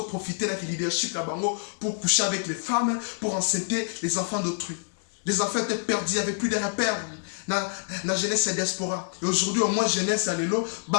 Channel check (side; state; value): right; silent; 59 dB below the other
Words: profité de leadership là-bas pour coucher avec les femmes, pour enceinter les enfants d'autrui. Les enfants étaient perdus, il n'y avait plus de repères. Dans la jeunesse et diaspora. Et aujourd'hui, au moins, jeunesse à l'élo,